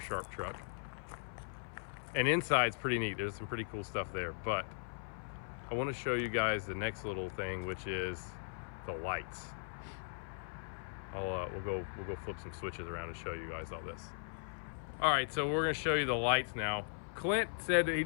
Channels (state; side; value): silent; right; 52 dB below the other